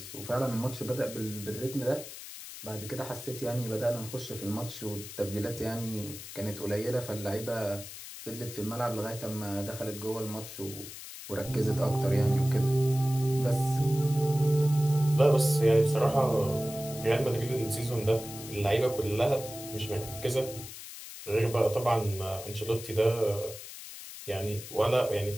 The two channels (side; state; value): left; noise; hiss, 12 dB below the sound